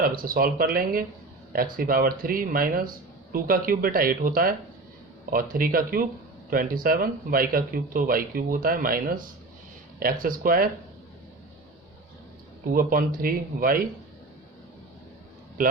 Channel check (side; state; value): left; quieter; 3.2 dB